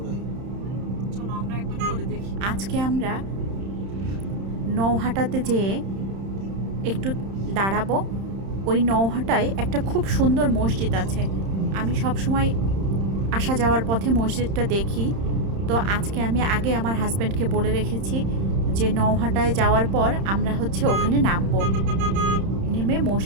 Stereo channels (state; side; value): late; left; 31 ms